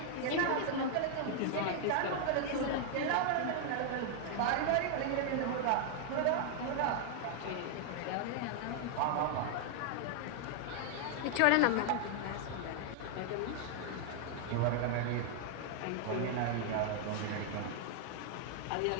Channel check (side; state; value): both; different; correlation 0.00